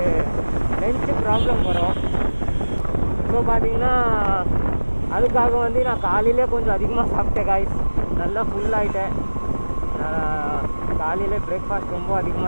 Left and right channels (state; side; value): inverted; both; correlation -1.00